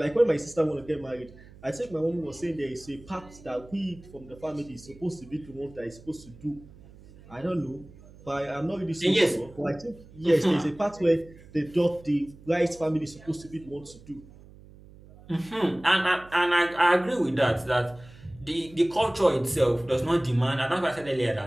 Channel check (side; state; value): right; noise; hum, 21 dB below the sound